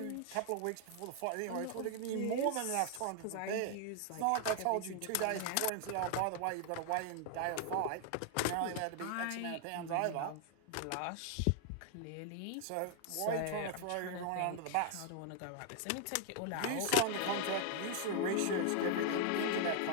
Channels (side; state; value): both; different; correlation 0.00